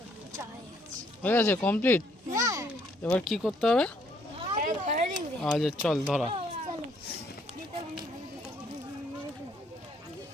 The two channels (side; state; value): both; normal; correlation 0.67